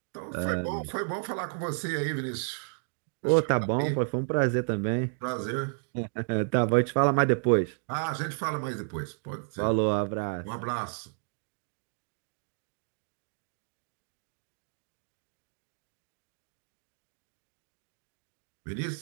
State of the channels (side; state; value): left; silent; digital silence